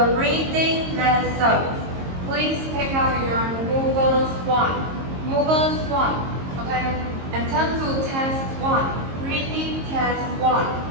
the reading lesson. Please take out your movers 1. Movers 1, okay? And turn to test 1. Reading test 1,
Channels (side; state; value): left; late; 22 ms